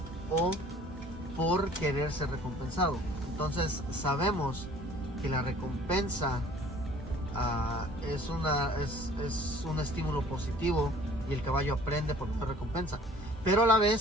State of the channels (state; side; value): normal; both; correlation 0.52